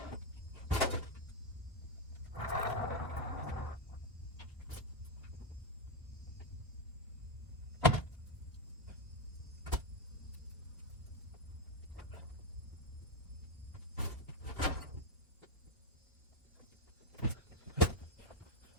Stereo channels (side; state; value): both; normal; correlation 0.07